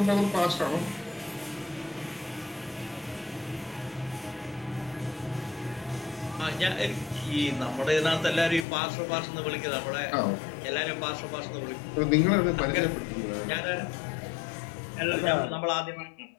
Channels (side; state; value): right; drops out; at 8.7 s